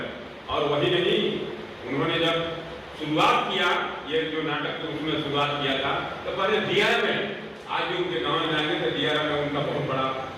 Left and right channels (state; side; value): identical; both; correlation 1.00